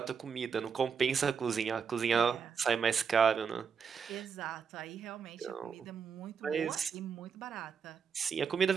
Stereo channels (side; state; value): left; quieter; 6.5 dB